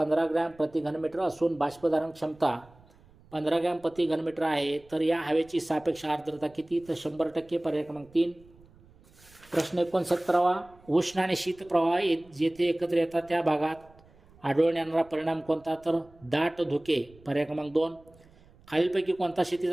ग्रॅम प्रति घनमीटर असून बाष्पधारण क्षमता 15 ग्रॅम प्रति घनमीटर आहे. तर या हवेची सापेक्ष आर्द्रता किती? तर 100%, पर्याय क्रमांक 3. प्रश्न 69वा, उष्ण आणि शीत प्रवाह जेथे एकत्र येतात त्या भागात आढळून येणारा परिणाम कोणता? तर दाट धुके, पर्याय क्रमांक 2. खालीलपैकी कोणता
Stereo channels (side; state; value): right; noise; rumble, 27 dB below the sound